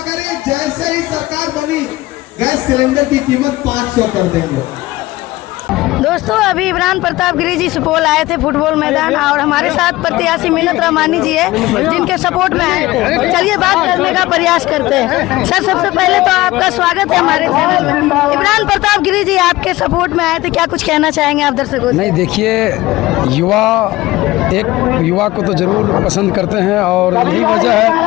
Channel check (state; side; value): quieter; right; 18.5 dB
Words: करे, जैसे ही सरकार बनी गैस सिलेंडर की कीमत 500 कर देंगे। दोस्तों अभी इमरान प्रताप गिरी जी सुपौल आए थे फुटबॉल मैदान और हमारे साथ प्रत्याशी मिन्नत रहमानी जी है जिनके सपोर्ट में आए थे। चलिए बात करने का प्रयास करते हैं। सर सबसे पहले तो आपका स्वागत है हमारे चैनल में। इमरान प्रताप गिरी जी आपके सपोर्ट में आए थे, क्या कुछ कहना चाहेंगे आप दर्शकों से? नहीं देखिए, युवा को तो जरूर पसंद करते हैं और यही वजह है